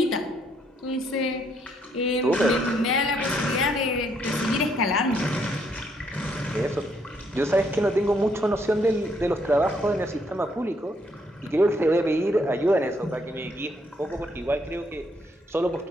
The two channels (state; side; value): normal; both; correlation 0.71